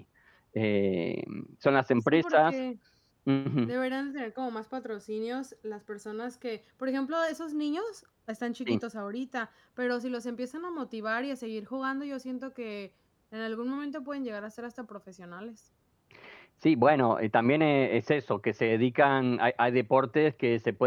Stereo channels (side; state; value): both; identical; correlation 1.00